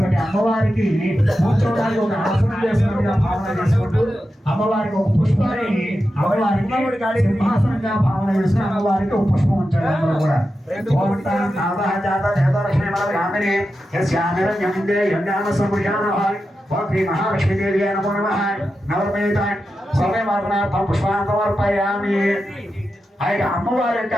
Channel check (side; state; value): both; normal; correlation 0.90